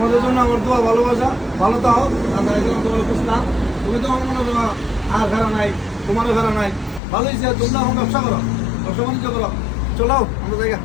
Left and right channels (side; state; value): right; drops out; at 7.0 s